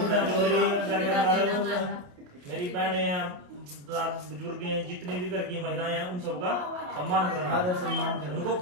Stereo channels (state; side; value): late; left; 28 ms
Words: है। जो मेरी घर के अंदर मेरी बहनें हैं, बुजुर्ग हैं, जितने भी घर की महिलाएं हैं, उन सबका सम्मान करना, आदर सम्मान करना, उनको